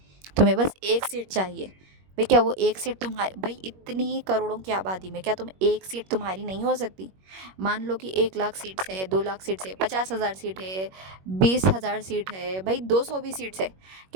तुम्हें बस एक सीट चाहिए। भाई क्या वो एक सीट तुम्हारी, भाई इतनी करोड़ों की आबादी में क्या तुम एक सीट तुम्हारी नहीं हो सकती? मान लो कि 1 लाख सीट्स है, 2 लाख सीट्स है, 50,000 सीट है, 20,000 सीट है, भाई 200 भी सीट्स है,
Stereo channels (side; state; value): left; late; 21 ms